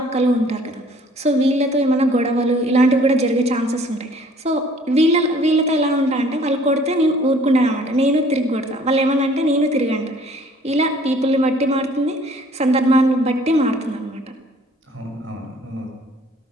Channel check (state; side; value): normal; both; correlation 0.55